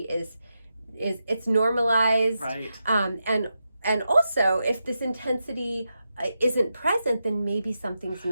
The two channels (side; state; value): both; inverted; correlation -0.88